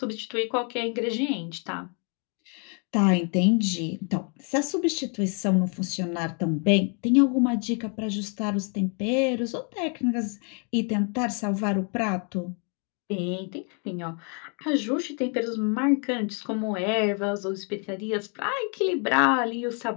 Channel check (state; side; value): quieter; right; 38.3 dB